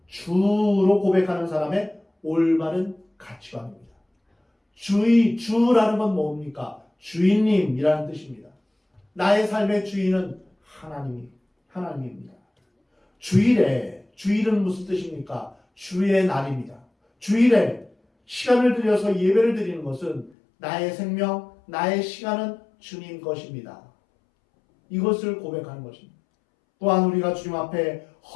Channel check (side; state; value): right; drops out; at 20.3 s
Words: 주로 고백하는 사람의 올바른 가치관입니다. 주라는 건 뭡니까? 주인님이라는 뜻입니다. 나의 삶의 주인은 하나님입니다. 주일은 무슨 뜻입니까? 주의 날입니다. 주일에 시간을 들여서 예배를 드리는 것은 나의 생명, 나의 시간은 주님 것입니다. 이것을 고백하는 것입니다. 또한 우리가 주님 앞에